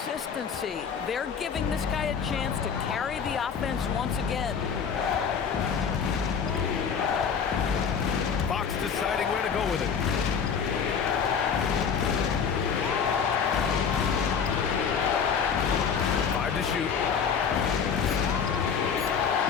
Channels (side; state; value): right; quieter; 6.7 dB